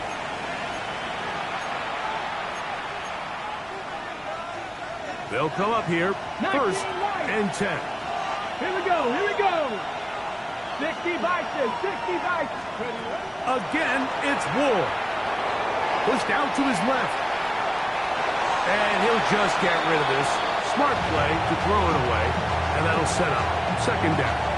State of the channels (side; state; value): both; identical; correlation 1.00